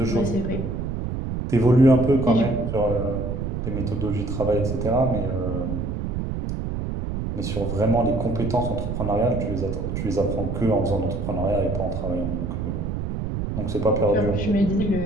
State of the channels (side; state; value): right; noise; rumble, 3 dB below the sound